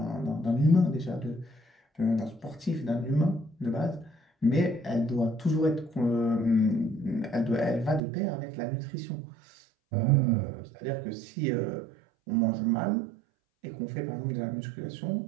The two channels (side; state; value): left; drops out; at 8.0 s